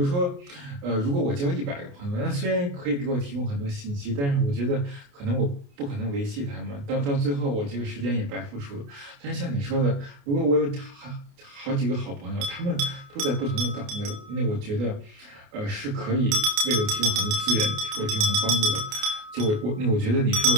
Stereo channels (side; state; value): left; late; 28 ms